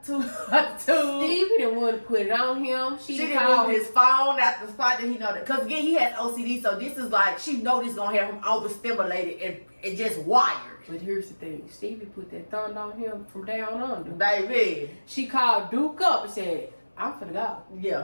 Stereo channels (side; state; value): both; inverted; correlation -1.00